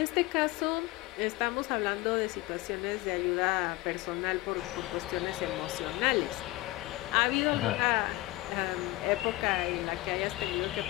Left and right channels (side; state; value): right; quieter; 19.4 dB